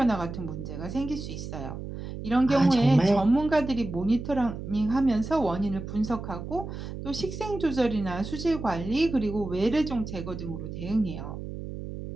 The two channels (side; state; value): right; noise; hum, 8 dB below the sound